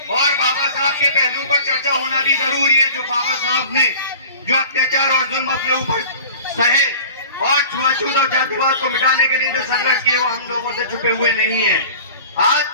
और बाबा साहब के पहलुओं पर चर्चा होना भी जरूरी है। जो बाबा साहब ने जो अत्याचार और जुल्म अपने ऊपर सहे और छुआछूत और जातिवाद को मिटाने के लिए जो संघर्ष किए वो हम लोगों से छुपे हुए नहीं है। आज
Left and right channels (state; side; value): inverted; both; correlation -0.41